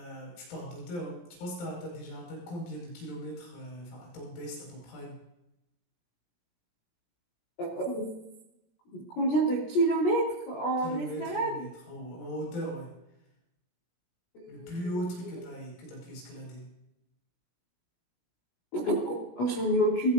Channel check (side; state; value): right; late; 17 ms